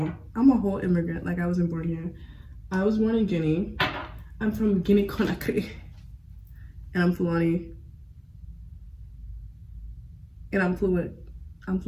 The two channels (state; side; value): identical; both; correlation 1.00